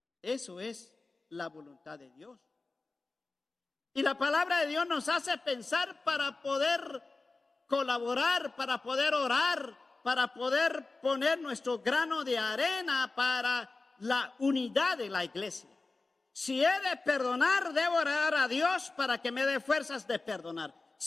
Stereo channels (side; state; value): right; quieter; 3.6 dB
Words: eso es la voluntad de Dios. Y la palabra de Dios nos hace pensar para poder colaborar, para poder orar, para poder poner nuestro grano de arena para la unidad de la iglesia. Si he de perdonar, debo orar a Dios para que me dé fuerzas de perdonar.